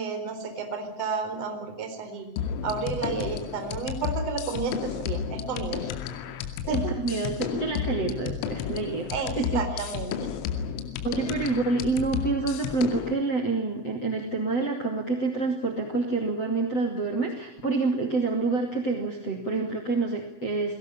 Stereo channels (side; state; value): right; late; 7.9 ms